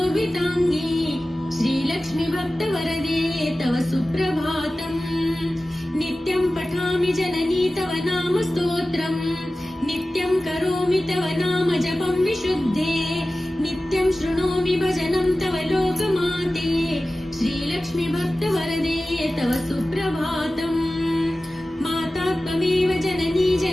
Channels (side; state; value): both; normal; correlation 0.96